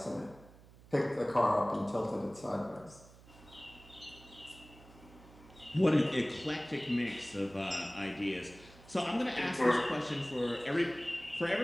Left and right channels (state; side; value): noise; right; hum, 22 dB below the sound